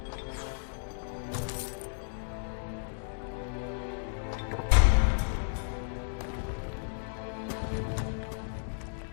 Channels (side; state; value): right; silent; digital silence